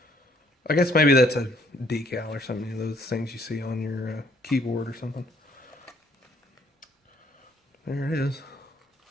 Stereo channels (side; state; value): both; normal; correlation 0.64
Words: I guess maybe that's a decal or something, you know, those things you see on your keyboard or something. There it is.